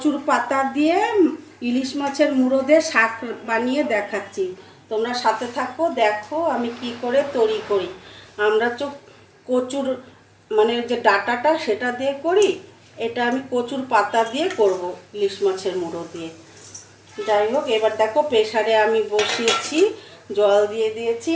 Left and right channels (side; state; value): both; identical; correlation 1.00